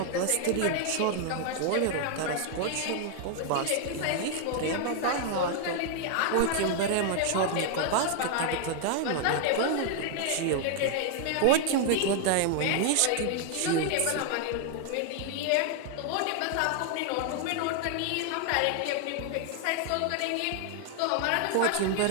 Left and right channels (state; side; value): different; both; correlation 0.00